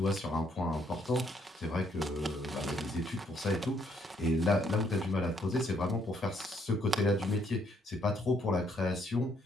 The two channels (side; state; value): both; normal; correlation 0.70